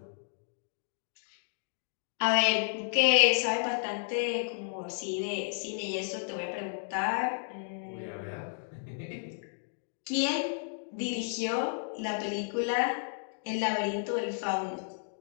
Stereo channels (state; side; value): silent; right; digital silence